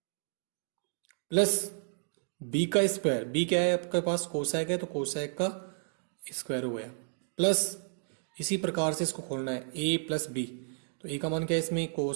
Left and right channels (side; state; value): left; silent; digital silence